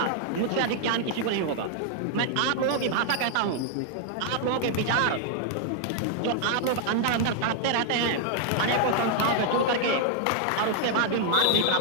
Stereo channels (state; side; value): different; both; correlation 0.00